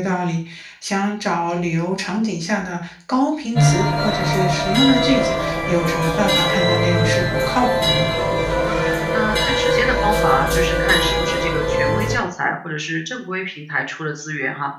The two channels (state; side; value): identical; both; correlation 1.00